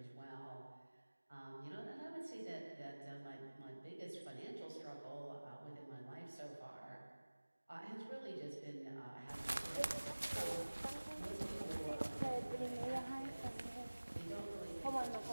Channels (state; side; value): inverted; both; correlation -1.00